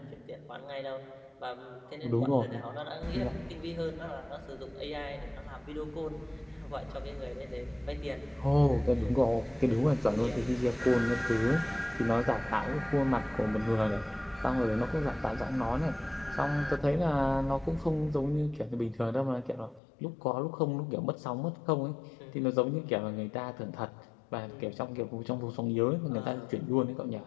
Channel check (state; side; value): drops out; right; at 19.8 s